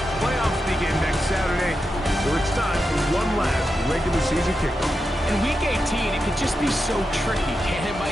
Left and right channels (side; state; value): both; normal; correlation 0.88